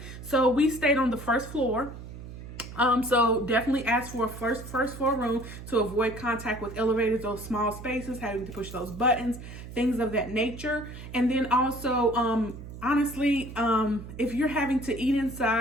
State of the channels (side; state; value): right; noise; hum, 12 dB below the sound